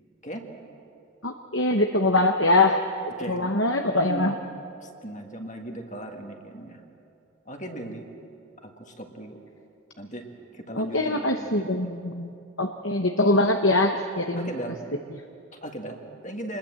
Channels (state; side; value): normal; both; correlation -0.10